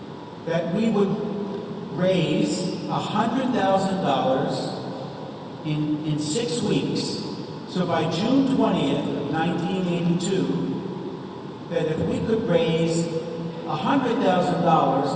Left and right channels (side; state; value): both; identical; correlation 1.00